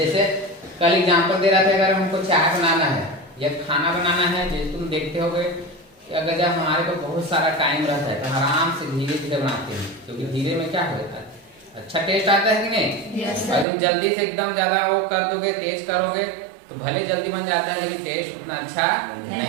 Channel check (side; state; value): left; drops out; at 13.7 s